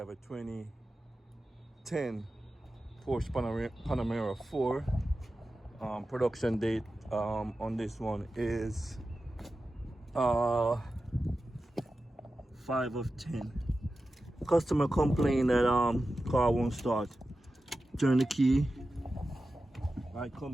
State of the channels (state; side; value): normal; both; correlation 0.93